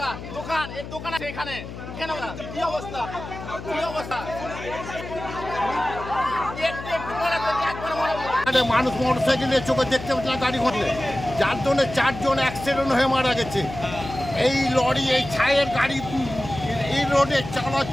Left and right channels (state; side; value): noise; left; hum, 11 dB below the sound